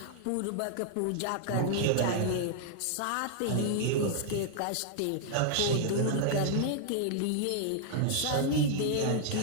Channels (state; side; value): different; both; correlation -0.01